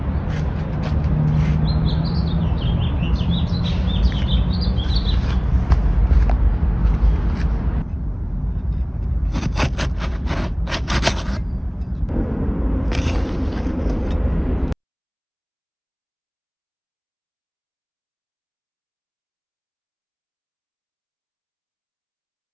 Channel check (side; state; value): both; identical; correlation 1.00